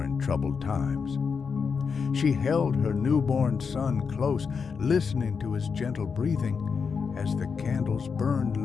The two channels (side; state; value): right; quieter; 5.7 dB